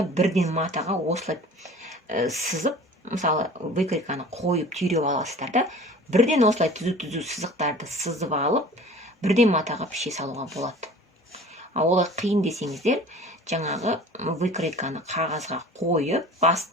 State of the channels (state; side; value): normal; both; correlation 0.43